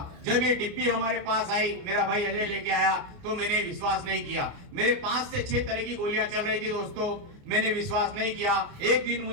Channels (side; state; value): left; late; 29 ms